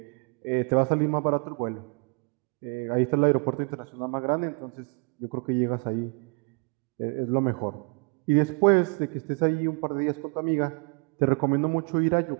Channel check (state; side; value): quieter; left; 36.1 dB